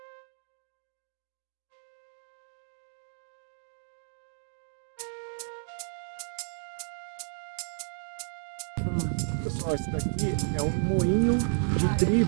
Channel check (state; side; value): silent; left; digital silence